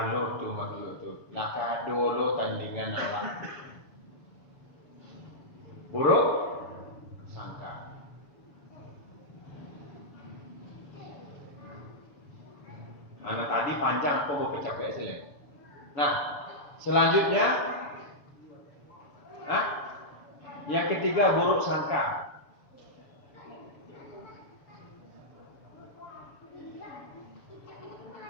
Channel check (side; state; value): right; late; 7.0 ms